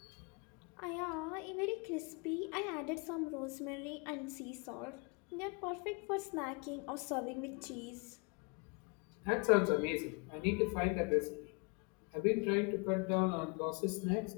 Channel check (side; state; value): right; quieter; 32.7 dB